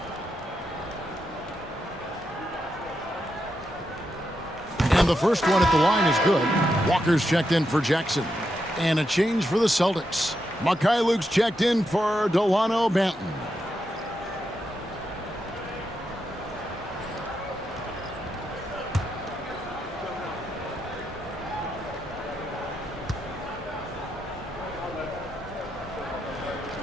And the first one at the line is good. Walker's checked in for Jackson. And a change for the Celtics. Mikhailuk's checked in for Delano Banton.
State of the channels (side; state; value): both; normal; correlation 0.84